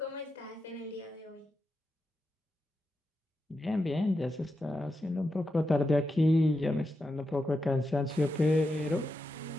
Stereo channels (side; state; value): both; normal; correlation 0.87